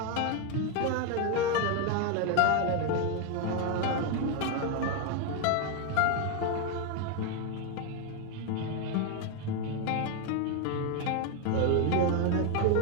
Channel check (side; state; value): both; different; correlation 0.01